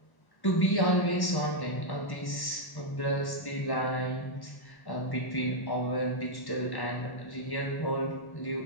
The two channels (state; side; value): late; right; 1.1 ms